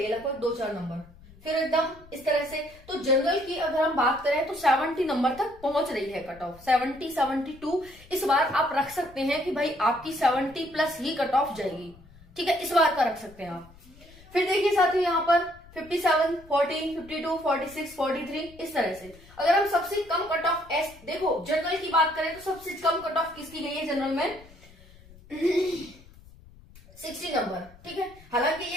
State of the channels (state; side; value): noise; left; rumble, 23 dB below the sound